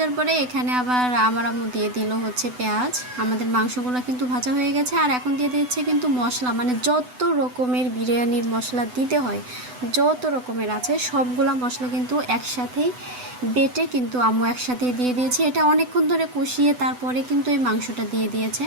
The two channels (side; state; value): left; late; 8.0 ms